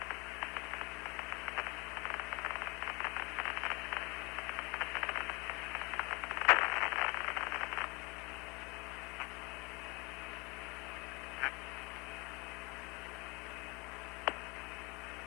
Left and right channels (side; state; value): right; quieter; 26.8 dB